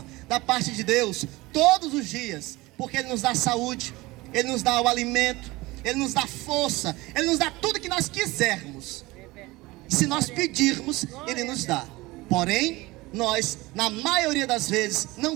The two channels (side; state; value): left; quieter; 21.0 dB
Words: da parte de Deus, todos os dias, porque Ele nos dá saúde, Ele nos dá o alimento, Ele nos dá força, Ele nos dá tudo que nós quisermos. Se nós pedirmos, Ele nos dá. Porém, nós, na maioria das vezes, não